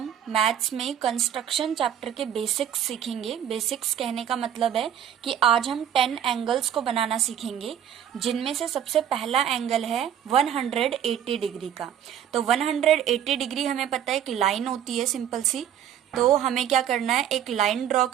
maths में कंस्ट्रक्शन चैप्टर के बेसिक्स सीखेंगे। बेसिक्स कहने का मतलब है कि आज हम 10 एंगल्स को बनाना सीखेंगे, जिनमें से सबसे पहला एंगल है 180 डिग्री का। तो 180 डिग्री हमें पता है एक लाइन होती है सिंपल सी। तो हमें क्या करना है, एक लाइन ड्रॉ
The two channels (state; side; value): quieter; left; 9.8 dB